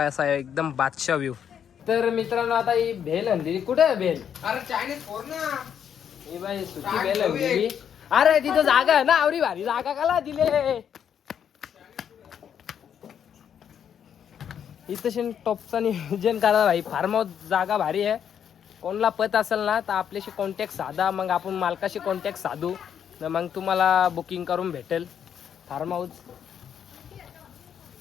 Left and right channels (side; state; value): right; quieter; 8.5 dB